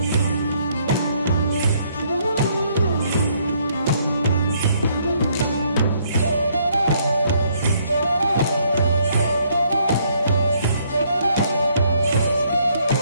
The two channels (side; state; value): both; inverted; correlation -0.68